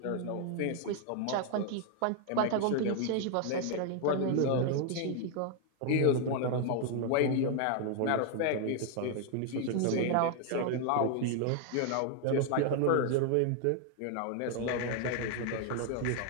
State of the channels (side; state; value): both; different; correlation 0.00